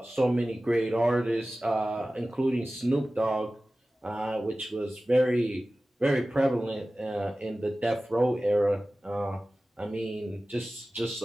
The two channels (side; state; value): both; normal; correlation 0.96